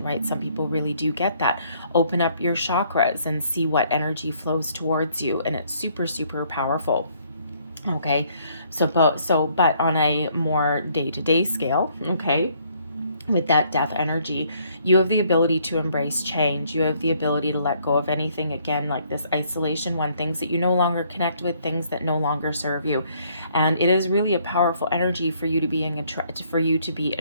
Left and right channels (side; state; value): both; inverted; correlation -0.66